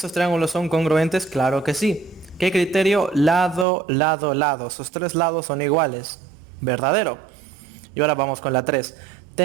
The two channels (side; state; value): left; drops out; at 3.7 s